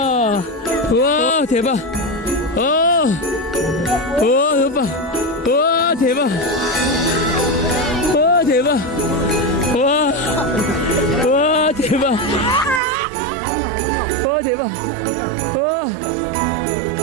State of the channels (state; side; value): drops out; left; at 12.8 s